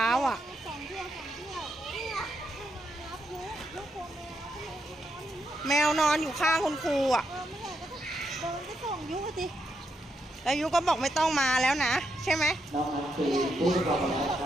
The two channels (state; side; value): normal; both; correlation 0.81